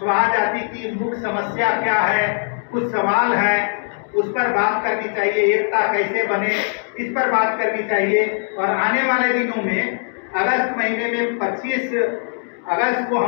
जाति की मुख्य समस्या क्या है, कुछ सवाल हैं, उस पर बात करनी चाहिए। एकता कैसे बने, इस पर बात करनी चाहिए। और आने वाले दिनों में अगस्त महीने में 25 अगस्त को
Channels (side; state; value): right; silent; 66 dB below the other